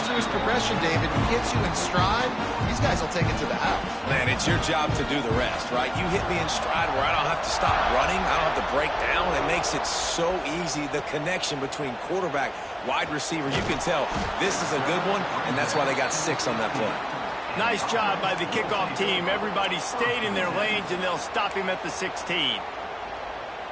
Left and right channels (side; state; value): both; identical; correlation 1.00